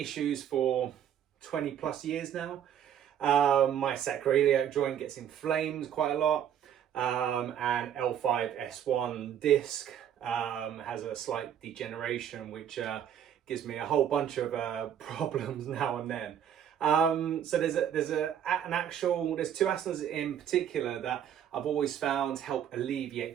for 20 plus years now. My sacroiliac joint gets inflamed quite a lot. And L5-S1 disc has a slight degeneration, which gives me a whole bunch of problems now and then. So there's two asanas in particular that I've always found help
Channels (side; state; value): left; quieter; 9.5 dB